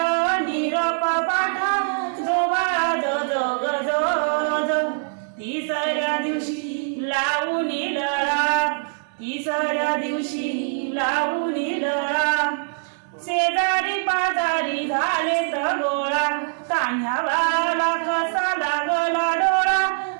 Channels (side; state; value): left; silent; 63 dB below the other